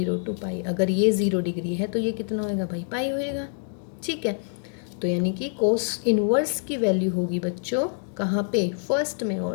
टू पाई। अगर ये 0 डिग्री है तो ये कितना होएगा भाई, पाई होएगा, ठीक है। तो यानी कि कॉस इनवर्स की वैल्यू होगी बच्चों कहाँ पे, फर्स्ट में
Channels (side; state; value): right; silent; digital silence